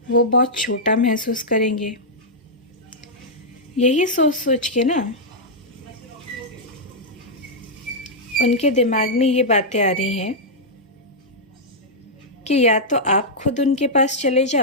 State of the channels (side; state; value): both; normal; correlation -0.08